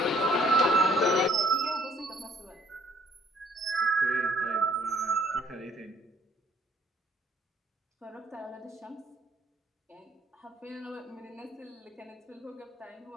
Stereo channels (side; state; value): both; normal; correlation 0.62